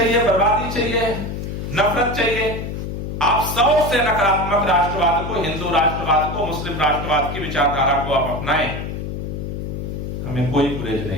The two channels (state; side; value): noise; left; hum, 5 dB below the sound